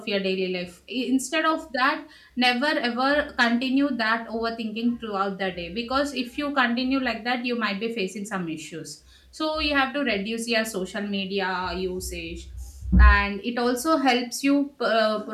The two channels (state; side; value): identical; both; correlation 1.00